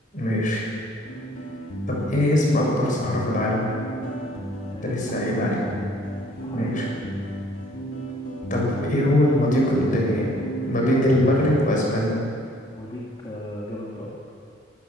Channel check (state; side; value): normal; both; correlation 0.60